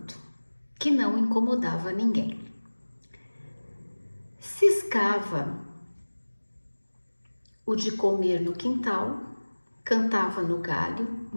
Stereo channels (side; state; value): both; inverted; correlation -1.00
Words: que não incomodava ninguém. Ciscava o de comer no quintal, cantava no galho